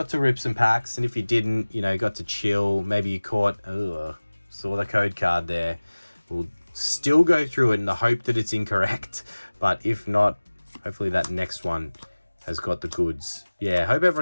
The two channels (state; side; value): inverted; both; correlation -1.00